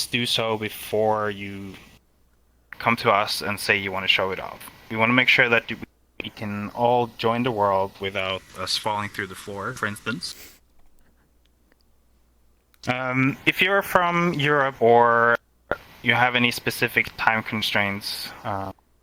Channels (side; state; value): both; identical; correlation 1.00